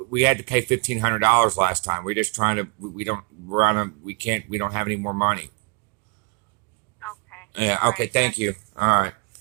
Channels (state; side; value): quieter; left; 32.3 dB